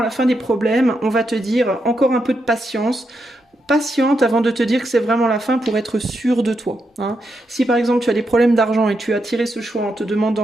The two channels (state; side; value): normal; both; correlation 0.83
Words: la fin des problèmes? On va te dire encore un peu de patience. Patiente avant de te dire que c'est vraiment la fin pour être sûr de toi. Hein. Si par exemple tu as des problèmes d'argent et tu as tiré ce choix en te